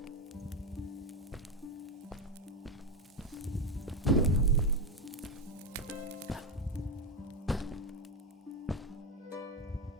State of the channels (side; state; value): both; normal; correlation 0.09